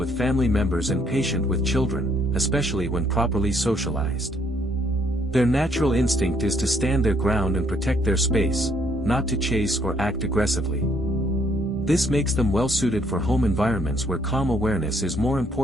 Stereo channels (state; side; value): normal; both; correlation 0.68